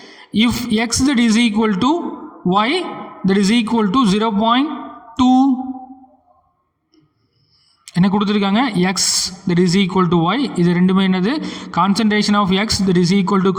If x that is equal to y that is equal to 0.2 என்ன கொடுத்துருக்காங்க, X that is equal to Y. இது ரெண்டுமே என்னது, concentration of X that is equal to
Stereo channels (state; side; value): identical; both; correlation 1.00